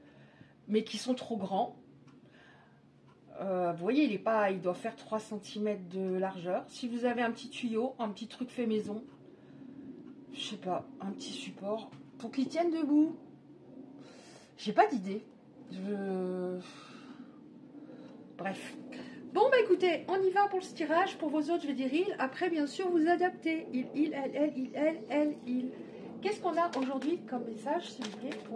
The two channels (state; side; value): identical; both; correlation 1.00